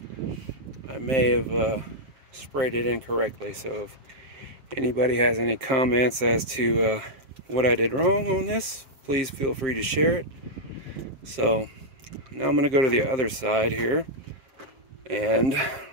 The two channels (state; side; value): late; left; 7.5 ms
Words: I may have sprayed it incorrectly. So if anybody has any comments as to what I did wrong on this, please feel free to share it. So now I'm going to go to the other side here, and